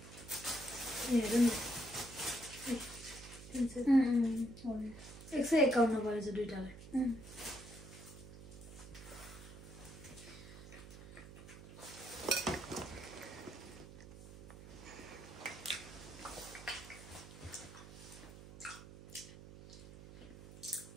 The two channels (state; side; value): noise; right; hum, 15 dB below the sound